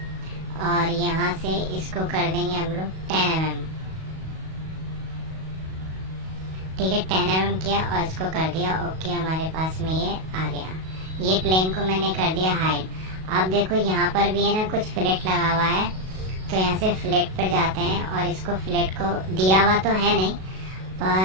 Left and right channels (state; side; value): late; left; 37 ms